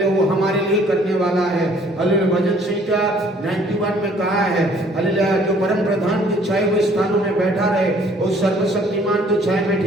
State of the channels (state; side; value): normal; both; correlation 0.58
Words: वो हमारे लिए करने वाला है। हालेलुया भजन संहिता 91 में कहा है हालेलुया जो परम प्रधान के छाए हुए स्थानों में बैठा रहे उस सर्वशक्तिमान के छाए में